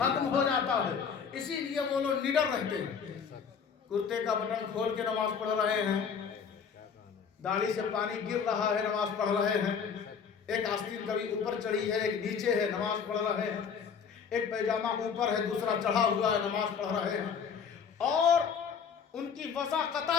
ہو جاتا ہے۔ اسی لیے وہ لوگ نڈر رہتے ہیں، کرتے کا بٹن کھول کے نماز پڑھ رہے ہیں، داڑھی سے پانی گر رہا ہے، نماز پڑھ رہے ہیں، ایک آستین کبھی اوپر چڑھی ہے ایک نیچے ہے، نماز پڑھ رہے ہیں، ایک پیجامہ اوپر ہے دوسرا چڑھا ہوا ہے، نماز پڑھ رہے ہیں۔ اور ان کی وضاقتہ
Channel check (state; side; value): quieter; right; 6.6 dB